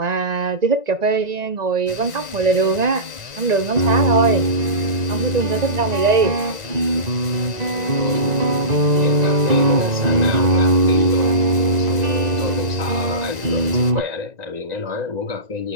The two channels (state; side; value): late; left; 1.9 ms